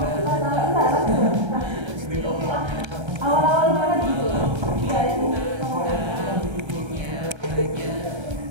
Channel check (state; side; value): late; left; 1.3 ms